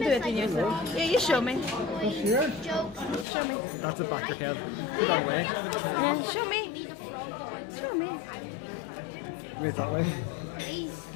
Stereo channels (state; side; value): drops out; right; at 3.2 s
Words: it in like yourself. frogs, Yeah, you show me. Here? jokes. Show me. That's the Baxter head. Put that away. Yeah, show me. Show me. Wait that way. Hey,